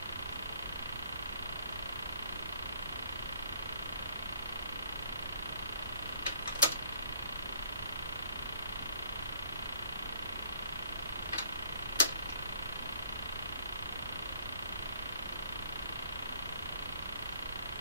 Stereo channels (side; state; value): both; inverted; correlation -0.60